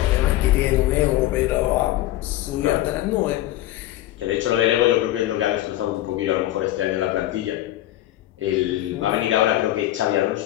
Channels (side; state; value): right; quieter; 14.6 dB